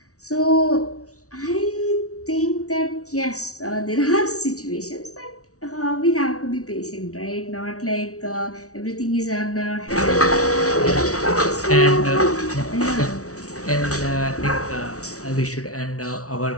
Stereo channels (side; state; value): right; late; 0.65 ms